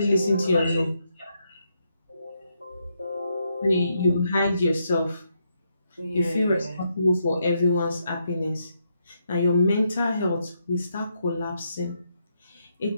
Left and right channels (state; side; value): inverted; both; correlation -0.79